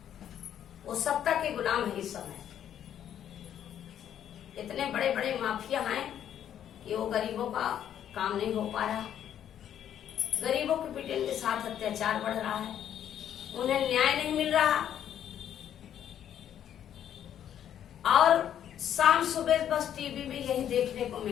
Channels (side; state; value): right; quieter; 10.1 dB